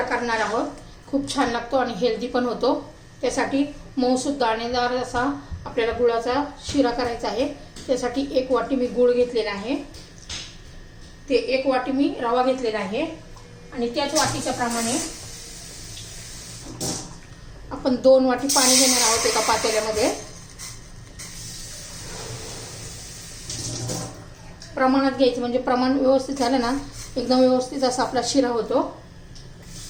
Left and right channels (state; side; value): identical; both; correlation 1.00